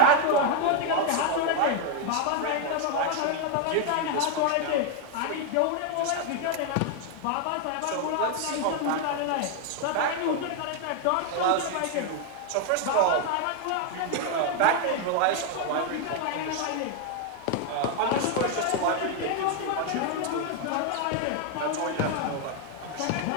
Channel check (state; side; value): different; both; correlation 0.01